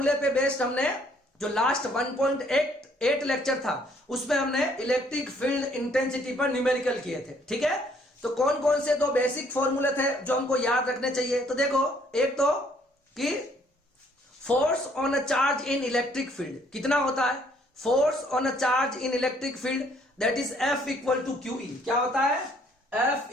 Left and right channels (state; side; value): normal; both; correlation 0.64